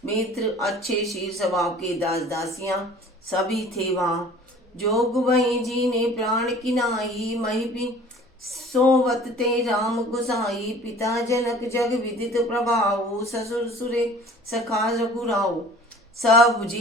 मित्र अच्छे शीर स्वभाव के दास दासियां सभी थे वहां। जोग वही जी ने प्राण किनाई, मही भी सोवत ते राम गुसाई। पिता जनक जग विदित प्रभाव, ससुर सुरे सखा रघुराव। सब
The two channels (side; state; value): both; normal; correlation 0.47